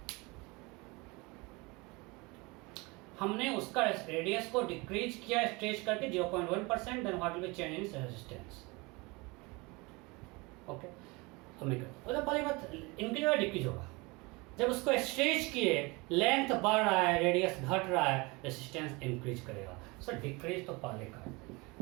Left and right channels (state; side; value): quieter; left; 25.6 dB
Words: हमने उसका रेडियस को डिक्रीज किया स्ट्रेच करके 0.1%, then what will be change in resistance. Okay, तो मैं मतलब पहली बात इंक्रीज होगा डिक्रीज होगा। जब उसको स्ट्रेच किए, लेंथ बढ़ रहा है, रेडियस घट रहा है, रेजिस्टेंस इंक्रीज करेगा। सो डिक्रीज तो पहले का है,